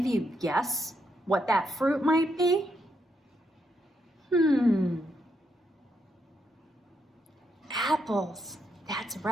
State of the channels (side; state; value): both; normal; correlation 0.79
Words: you guess what that fruit might be? Apples, that's